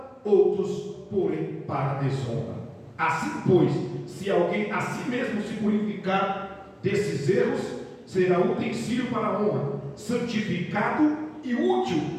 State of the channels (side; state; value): both; identical; correlation 1.00